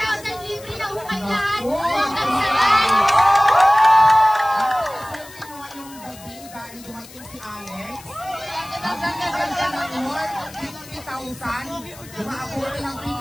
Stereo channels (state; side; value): noise; left; hiss, 19 dB below the sound